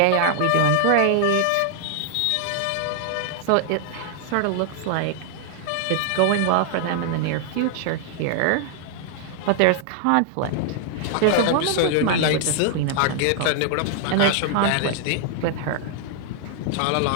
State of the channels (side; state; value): both; different; correlation 0.00